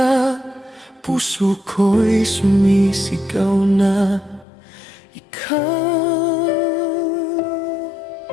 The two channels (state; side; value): drops out; right; at 4.5 s